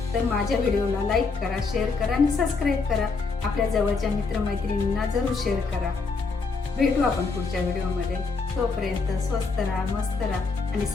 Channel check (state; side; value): quieter; right; 4.4 dB